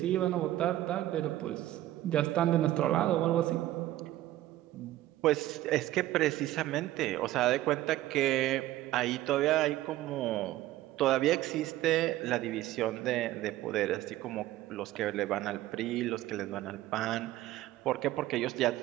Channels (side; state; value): left; quieter; 15.0 dB